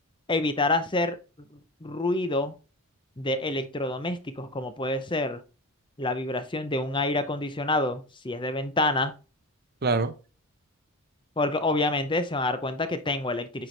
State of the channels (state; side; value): normal; both; correlation 0.23